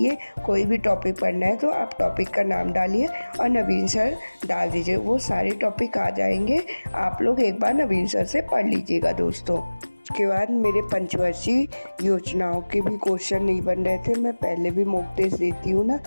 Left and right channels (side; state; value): both; inverted; correlation -1.00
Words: कोई भी टॉपिक पढ़ना है तो आप टॉपिक का नाम डालिए और नवीन सर डाल दीजिए, वो सारे टॉपिक आ जाएंगे। आप लोग एक बार नवीन सर से पढ़ लीजिएगा दोस्तों। उसके बाद मेरे पंचवर्षीय योजनाओं के भी क्वेश्चन नहीं बन रहे थे। मैं पहले भी मॉक टेस्ट देती हूँ ना,